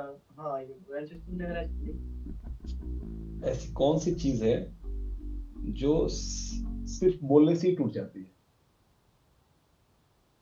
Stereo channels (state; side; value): identical; both; correlation 1.00